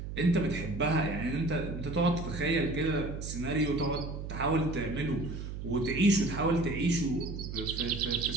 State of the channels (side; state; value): right; noise; hum, 7 dB below the sound